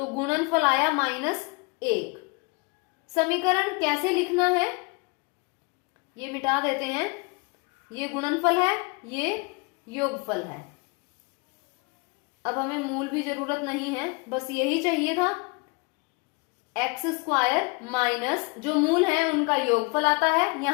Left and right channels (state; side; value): quieter; right; 29.2 dB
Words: गुणनफल आया -1। समीकरण कैसे लिखना है, ये मिटा देते हैं। ये गुणनफल है, ये योगफल है। अब हमें मूल भी जरूरत नहीं है, बस यही चाहिए था। एक्स स्क्वायर माइनस जो मूल है उनका योगफल आता है,